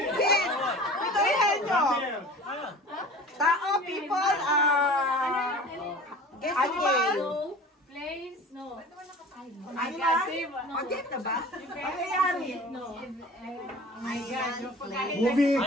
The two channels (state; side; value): normal; both; correlation 0.41